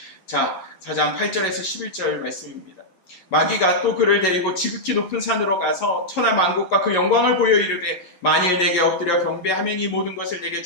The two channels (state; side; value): late; right; 11 ms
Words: 자, 4장 8절에서 11절 말씀입니다. 마귀가 또 그를 데리고 지극히 높은 산으로 가서 천하 만국과 그 영광을 보여 이르되 만일 내게 엎드려 경배하면 이 모든 것을 내게